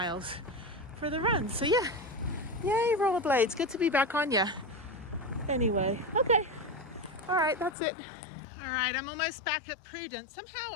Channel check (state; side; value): drops out; right; at 7.8 s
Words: for the run. So yeah, yay, rollerblades, good to be back on ya. Anyway, okay, all right, that's it. All right, I'm almost back at Prudence. Somehow